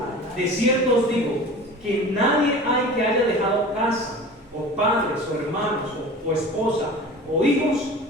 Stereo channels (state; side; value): normal; both; correlation 0.38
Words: De cierto os digo, que nadie hay que haya dejado casa, o padres, o hermanos, o esposa, o hijos,